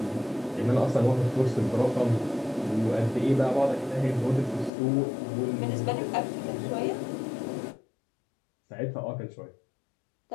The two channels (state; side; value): drops out; right; at 4.7 s